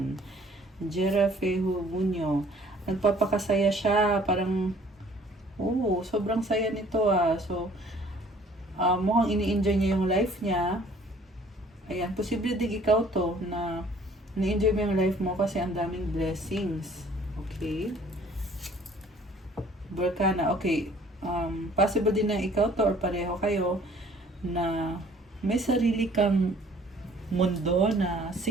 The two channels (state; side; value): normal; both; correlation 0.56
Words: Jerafehu Bunyo, nagpapakasaya siya, parang, sobrang saya nito So, mukhang ini-enjoy niya yung life niya. Ayan, posible din ikaw to, na ini-enjoy mo yung life mo kasi ang daming blessings. Okay? Berkana, okay. Possible din na ikaw to or pareho kayo na may sarili kang mundo na